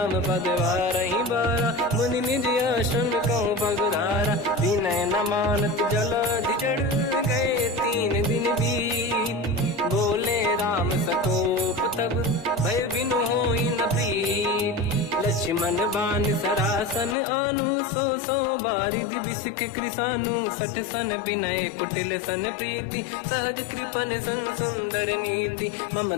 पद वारहि बारा, मुनि निज आश्रम कहूँ पगधारा। विनय न मानत जलाधि जड़, गए 3 दिन बीत। बोले राम सकोप तब, भय बिनु होई न प्रीत। लक्ष्मण बाण सरासन आनु, 100 बारिधि बिसिक कृसानु। 60 सन विनय कुटिल सन प्रीति, सहज कृपन सन सुंदर नीति।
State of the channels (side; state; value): right; drops out; at 17.2 s